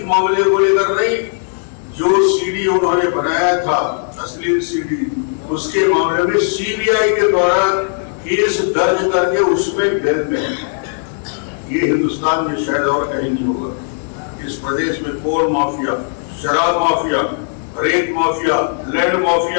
मामले को लेकर नहीं, जो सीडी उन्होंने बनाया था अश्लील सीडी, उसके मामले में सीबीआई के द्वारा केस दर्ज करके उसमें जेल में है। ये हिंदुस्तान में शायद और कहीं नहीं होगा। इस प्रदेश में कोल माफिया, शराब माफिया, रेत माफिया, लैंड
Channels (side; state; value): right; silent; 68 dB below the other